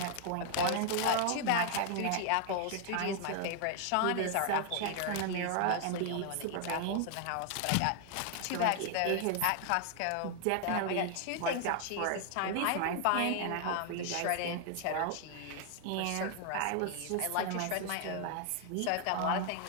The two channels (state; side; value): different; both; correlation 0.00